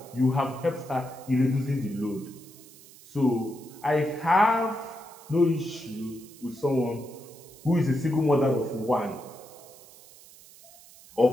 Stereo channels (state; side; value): noise; right; hiss, 22 dB below the sound